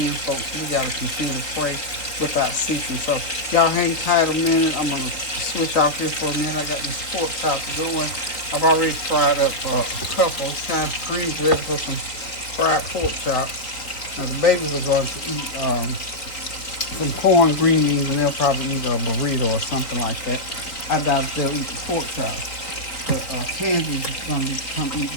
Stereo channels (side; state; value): right; late; 3.8 ms